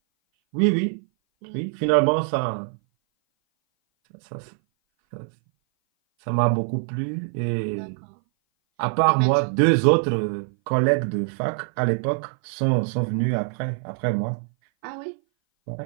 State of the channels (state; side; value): silent; left; 58 dB below the other